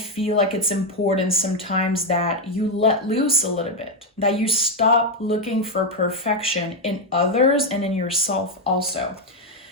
like it's important sometimes that you let loose a little bit, that you stop looking for perfection in others and in yourself also.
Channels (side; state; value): both; normal; correlation 0.04